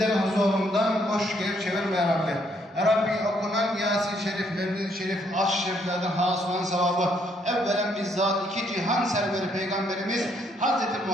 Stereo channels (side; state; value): both; normal; correlation 0.70